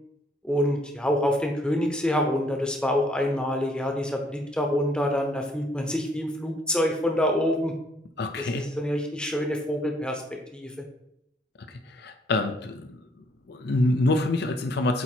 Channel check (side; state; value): both; normal; correlation 0.66